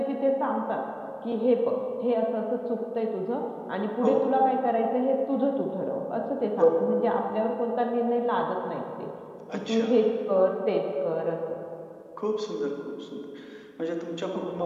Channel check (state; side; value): identical; both; correlation 1.00